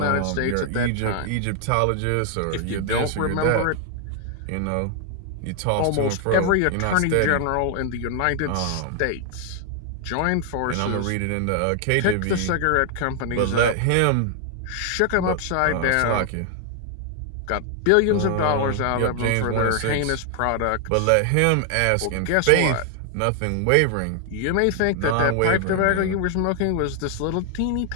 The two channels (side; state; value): both; different; correlation 0.00